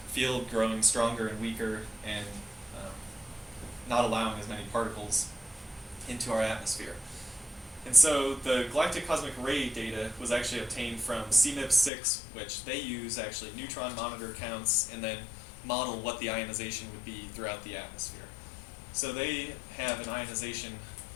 field growing stronger and weaker and not allowing as many particles into our atmosphere. And so the galactic cosmic ray data was actually obtained from CMIP6, which they use actually neutron monitor counts and then model what the ionization would be throughout the atmosphere. So they have an ionization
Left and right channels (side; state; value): right; drops out; at 11.9 s